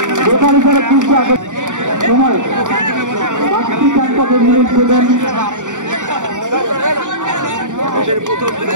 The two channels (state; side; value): late; left; 0.86 ms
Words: বেকারি করে সময় মিনিট দেবেন